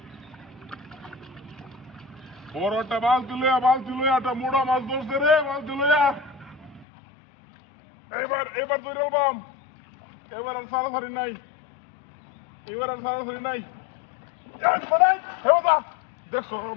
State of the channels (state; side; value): drops out; right; at 6.9 s